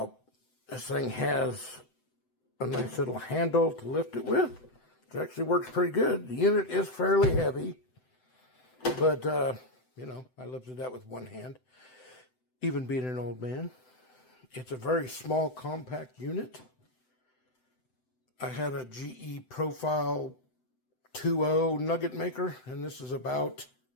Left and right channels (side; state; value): right; late; 7.9 ms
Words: thing has a nice little handle to lift it with. It actually works pretty good. The unit is fairly heavy, but you know, I lifted that with one hand, even being an old man. It's a very small, compact unit. I had a GE Profile 2.0 nugget maker, and this is about,